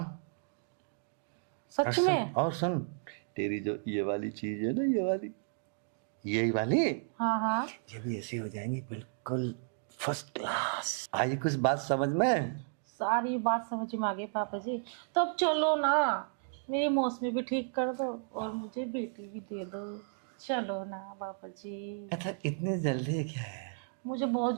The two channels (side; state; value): left; silent; digital silence